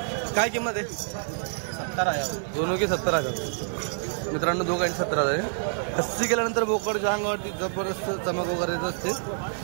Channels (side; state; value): left; silent; digital silence